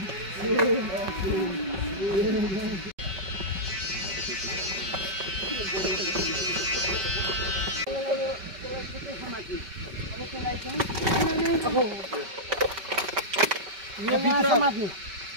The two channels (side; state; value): left; late; 5.2 ms